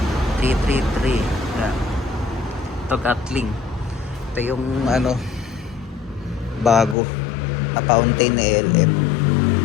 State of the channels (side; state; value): right; drops out; at 7.0 s